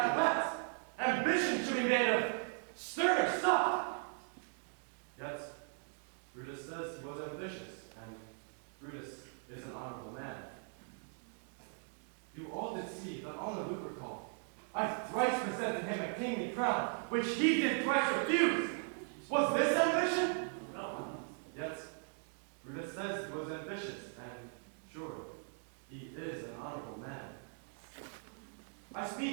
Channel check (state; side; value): silent; left; 52 dB below the other